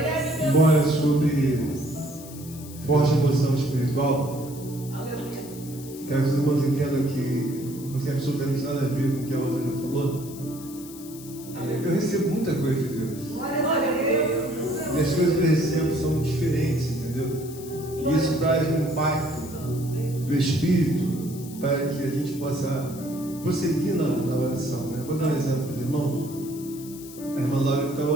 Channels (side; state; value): left; noise; hiss, 17 dB below the sound